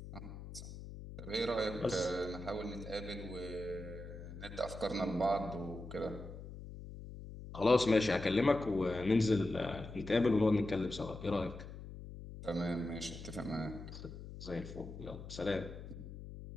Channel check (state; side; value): noise; left; hum, 11 dB below the sound